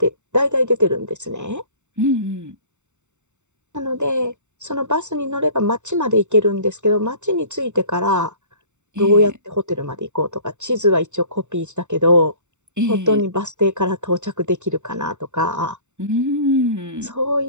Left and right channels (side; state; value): left; late; 0.84 ms